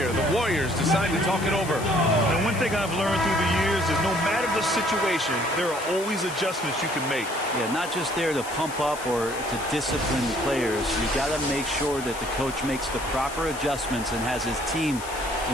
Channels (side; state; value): left; noise; hiss, 13 dB below the sound